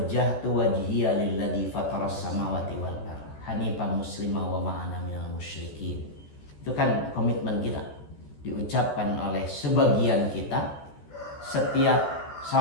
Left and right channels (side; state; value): right; late; 14 ms